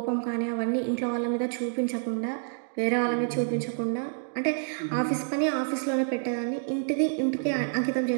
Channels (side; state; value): left; silent; digital silence